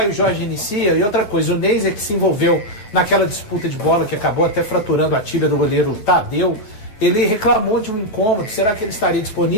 Jorge inicia? E outra coisa, o Neis é que se envolveu naquela disputa de bola que acabou até fraturando a tíbia do goleiro Tadeu. Ele reclamou de um incômodo. Será que ele estaria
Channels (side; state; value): right; late; 9.3 ms